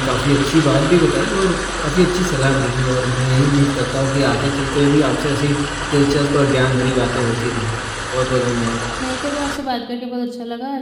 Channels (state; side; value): identical; both; correlation 1.00